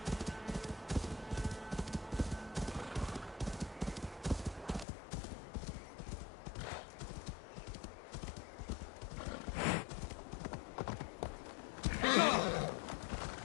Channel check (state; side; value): drops out; right; at 4.9 s